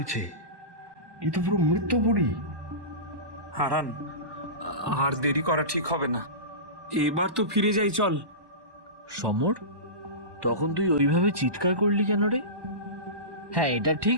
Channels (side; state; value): left; late; 1.2 ms